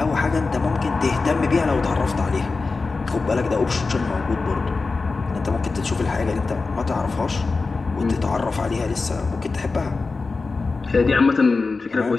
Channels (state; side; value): quieter; right; 4.0 dB